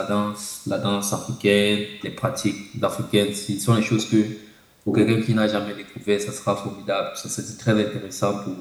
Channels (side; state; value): both; identical; correlation 1.00